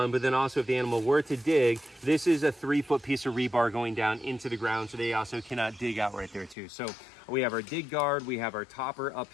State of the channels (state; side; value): drops out; right; at 6.6 s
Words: but then also if the animal were to dig, this is a 3-foot piece of rebar going down into the ground, so they also cannot dig out right there too. So we have our dig guard, we have our topper up